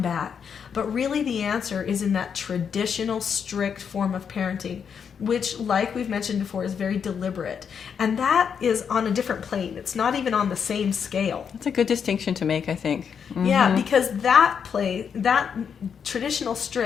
back. But really the answer is in that traditional, strict form of parenting, which, like we've mentioned before, is very deliberate. And that is on a different plane. It's not even on the same scale. It's a good distinction to make, I think. Yeah, because that traditional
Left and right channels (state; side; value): quieter; right; 7.1 dB